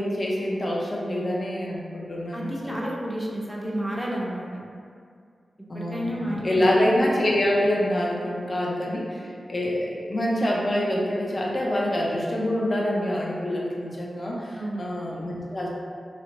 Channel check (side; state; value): both; normal; correlation 0.93